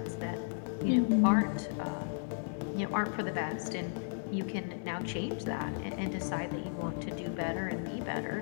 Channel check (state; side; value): silent; right; 55 dB below the other